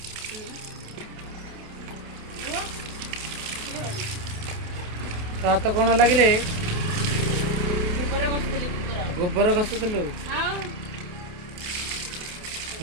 तो हाथ कौन लगे गोबर बसुली गोबर घसुलु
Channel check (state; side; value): late; left; 28 ms